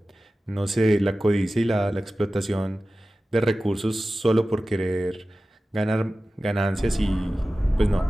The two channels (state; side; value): normal; both; correlation 0.96